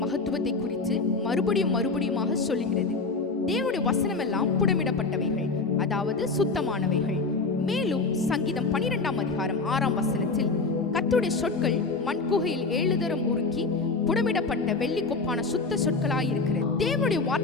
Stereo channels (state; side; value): quieter; right; 4.0 dB